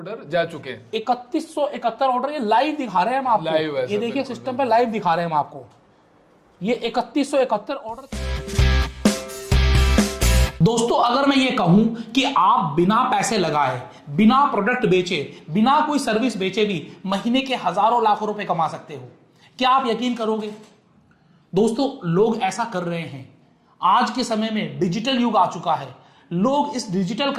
जा चुके हैं 3171 ऑर्डर, ये लाइव दिखा रहे हैं हम आपको। लाइव है ये देखिए सिस्टम पे लाइव दिखा रहे हैं हम आपको, ये 3171 ऑर्डर। दोस्तों अगर मैं ये कहूं कि आप बिना पैसे लगाए, बिना प्रोडक्ट बेचे, बिना कोई सर्विस बेचे भी महीने के हजारों लाखों रुपए कमा सकते हो, क्या आप यकीन करोगे? दोस्तों लोग ऐसा कर रहे हैं। आज के समय में डिजिटल युग आ चुका है, लोग इस डिजिटल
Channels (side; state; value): both; identical; correlation 1.00